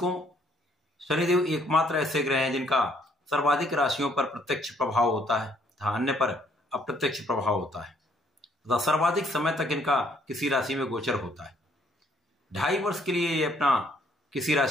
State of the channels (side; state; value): both; normal; correlation 0.66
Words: शनिदेव एकमात्र ऐसे ग्रह हैं जिनका सर्वाधिक राशियों पर प्रत्यक्ष प्रभाव होता है तथा अन्य पर अप्रत्यक्ष प्रभाव होता है तथा सर्वाधिक समय तक इनका किसी राशि में गोचर होता है। 2.5 वर्ष के लिए ये अपना किसी